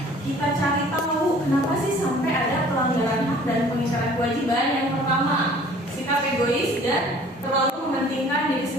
kita cari tahu kenapa sih sampai ada pelanggaran hak dan pengingkaran kewajiban, yang pertama sikap egois dan terlalu mementingkan diri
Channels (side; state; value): both; normal; correlation 0.51